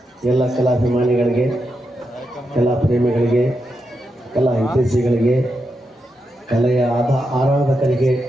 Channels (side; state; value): both; normal; correlation 0.85